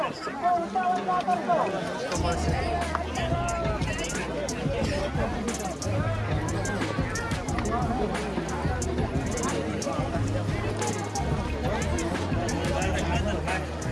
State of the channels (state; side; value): identical; both; correlation 1.00